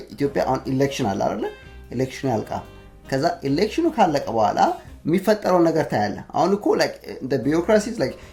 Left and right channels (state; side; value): identical; both; correlation 1.00